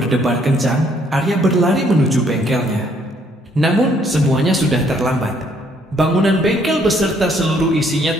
kencang, Arya berlari menuju bengkelnya. Namun semuanya sudah terlambat. Bangunan bengkel beserta seluruh isinya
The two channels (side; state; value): both; normal; correlation 0.67